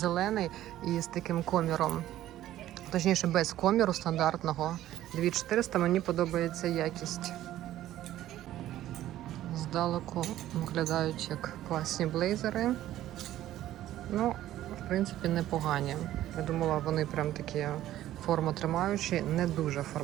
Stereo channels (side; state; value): left; quieter; 13.5 dB